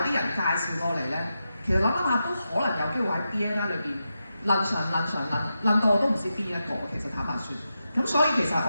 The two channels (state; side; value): inverted; both; correlation -0.88